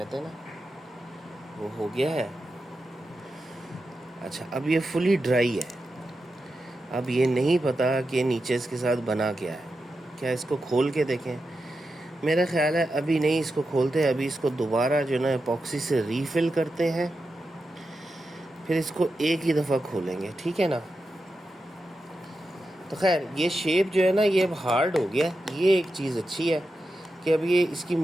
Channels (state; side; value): normal; both; correlation 0.89